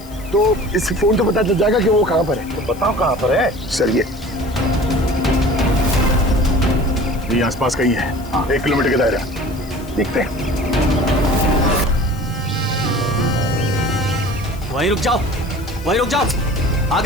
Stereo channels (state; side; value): noise; left; hiss, 21 dB below the sound